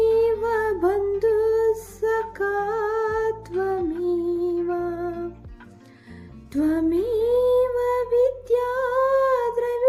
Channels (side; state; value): both; identical; correlation 1.00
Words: बन्धुः सखा त्वमेव त्वमेव विद्या